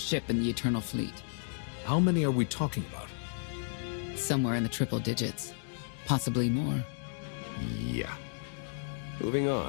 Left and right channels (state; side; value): silent; right; digital silence